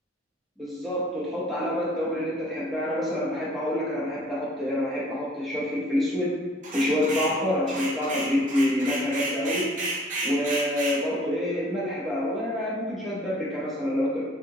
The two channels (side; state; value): both; normal; correlation 0.55